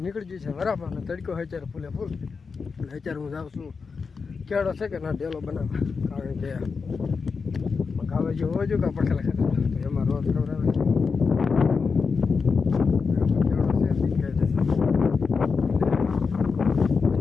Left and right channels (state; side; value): quieter; right; 5.1 dB